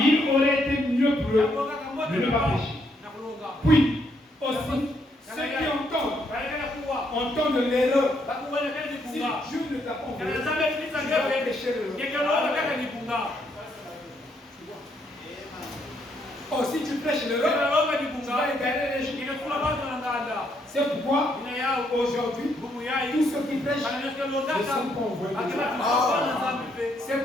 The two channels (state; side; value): normal; both; correlation 0.73